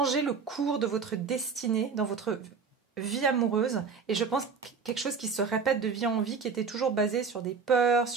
le cours de votre destinée dans votre vie amoureuse. Et je pense quelque chose qui se répète de vie en vie, qui était toujours basé sur des peurs,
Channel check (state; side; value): quieter; left; 5.4 dB